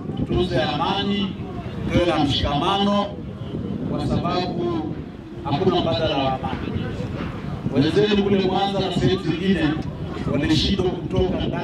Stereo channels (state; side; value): identical; both; correlation 1.00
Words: tutunze amani, tuwe na mshikamano, kwa sababu hakuna mbadala wa amani. Wenzetu kule Mwanza na sehemu zingine walishindwa kutoka